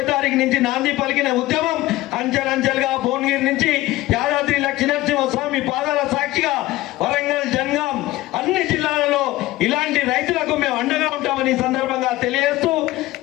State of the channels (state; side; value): quieter; right; 17.4 dB